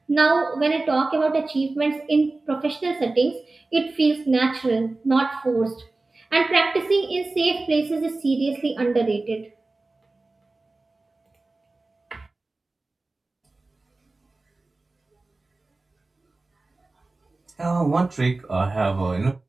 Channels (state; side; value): quieter; left; 3.3 dB